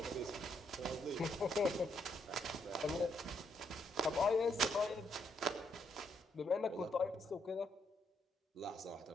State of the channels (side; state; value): both; normal; correlation 0.75